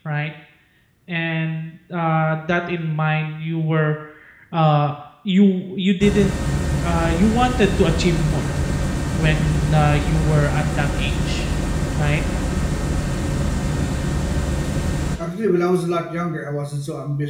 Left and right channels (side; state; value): both; identical; correlation 1.00